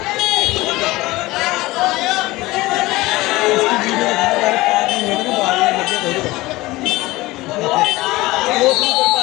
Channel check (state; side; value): quieter; right; 19.7 dB